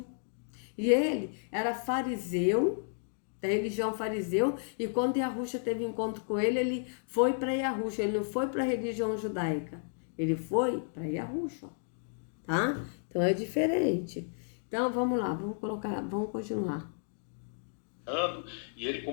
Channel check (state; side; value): silent; right; digital silence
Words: e ele era fariseu, da religião fariseu, e quando Yahushua teve encontro com ele foi para Yahushua, ele não foi para a religião judaica, ele foi para Yahushua, tá? Então é diferente. Então vamos lá, vamos continuar. E ele,